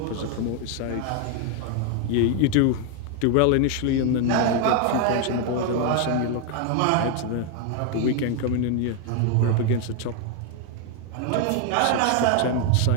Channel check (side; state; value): both; different; correlation 0.01